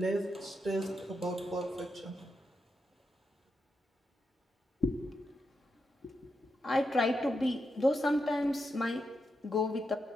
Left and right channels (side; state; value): both; normal; correlation 0.85